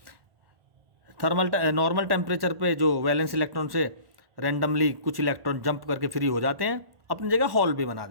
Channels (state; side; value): late; left; 1.4 ms